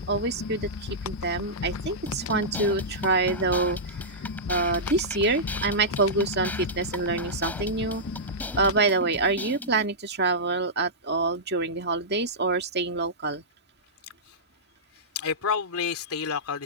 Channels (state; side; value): normal; both; correlation -0.13